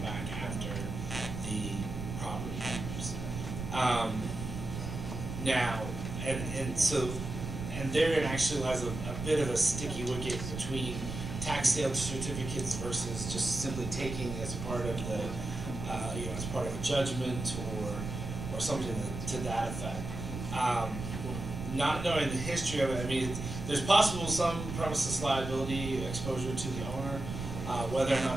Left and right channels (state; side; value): noise; right; rumble, 6 dB below the sound